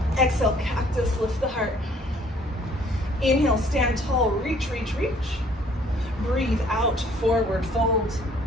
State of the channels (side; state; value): both; normal; correlation 0.59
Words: Exhale, cactus, lift the heart. Inhale, stand tall, reach, reach, reach. Breathe out, forward fold.